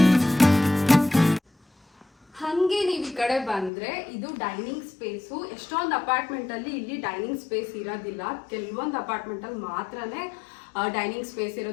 ಕಡೆ ಬಂದ್ರೆ ಇದು ಡೈನಿಂಗ್ ಸ್ಪೇಸು. ಎಷ್ಟೊಂದು ಅಪಾರ್ಟ್ಮೆಂಟ್ ಅಲ್ಲಿ ಇಲ್ಲಿ ಡೈನಿಂಗ್ ಸ್ಪೇಸ್ ಇರೋದಿಲ್ಲ, ಕೆಲವೊಂದು ಅಪಾರ್ಟ್ಮೆಂಟ್ ಅಲ್ಲಿ ಮಾತ್ರನೇ ಡೈನಿಂಗ್ ಸ್ಪೇಸ್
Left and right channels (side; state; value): right; drops out; at 3.7 s